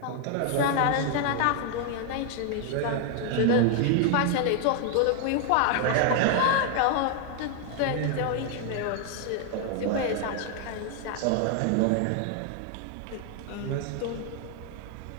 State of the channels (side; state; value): both; different; correlation 0.00